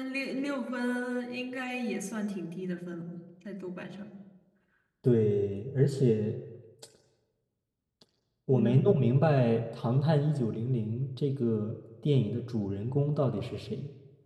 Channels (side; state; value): both; identical; correlation 1.00